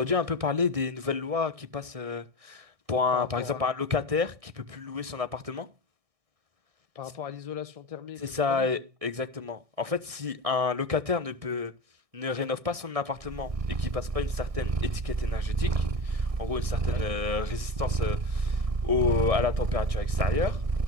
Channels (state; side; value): late; left; 1.6 ms